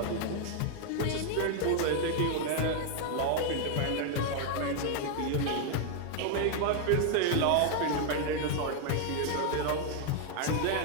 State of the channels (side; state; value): both; different; correlation 0.00